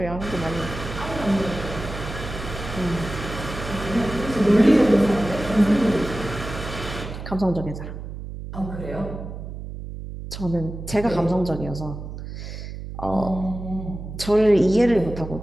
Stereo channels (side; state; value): right; noise; hum, 9 dB below the sound